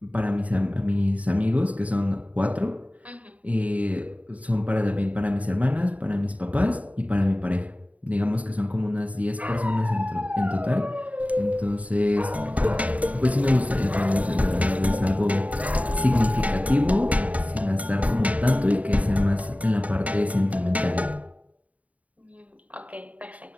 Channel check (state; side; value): late; left; 0.069 ms